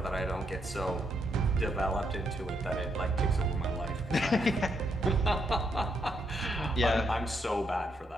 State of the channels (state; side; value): normal; both; correlation 0.77